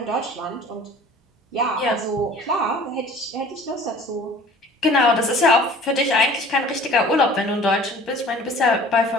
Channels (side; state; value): both; normal; correlation 0.47